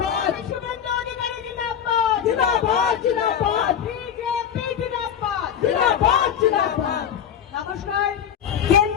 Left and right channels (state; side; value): quieter; right; 8.7 dB